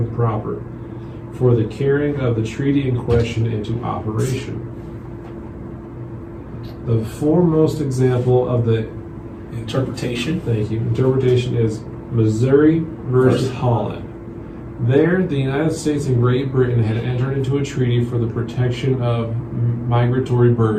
proper for the carrying of the treaty in question into operation. The foremost example of the Interpretation. interpretation is Missouri versus Holland. There, the United States and Great Britain had entered into a treaty for the protection of migratory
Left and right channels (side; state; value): both; identical; correlation 1.00